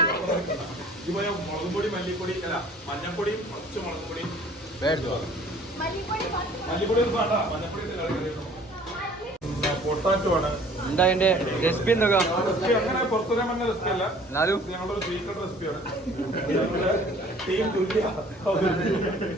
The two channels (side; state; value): both; normal; correlation 0.52